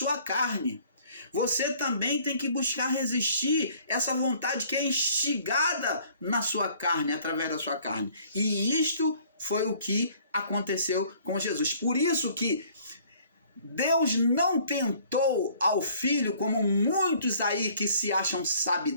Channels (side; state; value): both; inverted; correlation -0.56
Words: carne. Você também tem que buscar resistir essa vontade que é instigada na sua carne, através da sua carne. E isto foi o que aconteceu com Jesus. Por isso que Deus não tentou ao Filho, como muitos aí que se acham